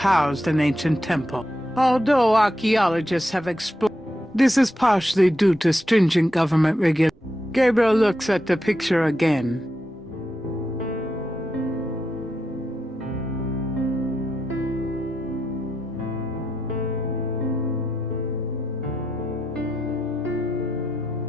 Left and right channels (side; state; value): right; noise; rumble, 30 dB below the sound